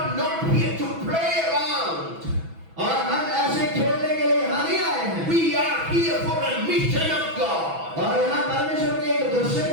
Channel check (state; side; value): late; left; 6.1 ms